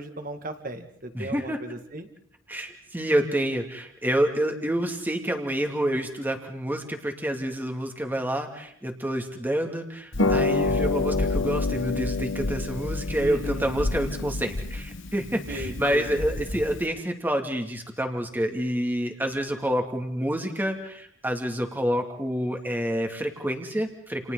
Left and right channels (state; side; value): normal; both; correlation 0.72